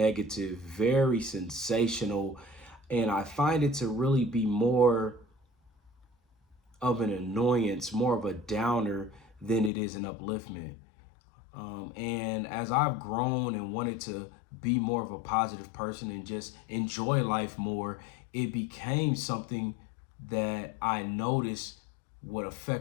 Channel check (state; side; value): drops out; right; at 9.7 s